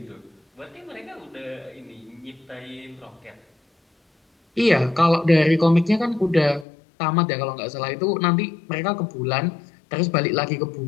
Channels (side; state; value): right; drops out; at 6.7 s